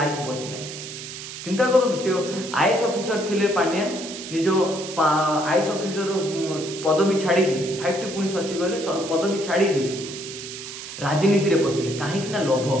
बची ना। चिंता करूँ सी आईएएस ऑफिसर थिले पांड्यान निज आईएएस ऑफिसर पदवी छाड़ी 5टी पुणी सचिव गले पदवी छाड़ी राजनीति रे पशिले कहीं लोभ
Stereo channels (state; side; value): noise; right; hiss, 10 dB below the sound